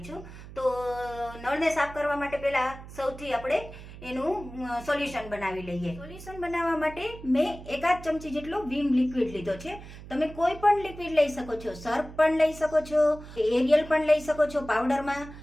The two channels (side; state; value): right; noise; hum, 15 dB below the sound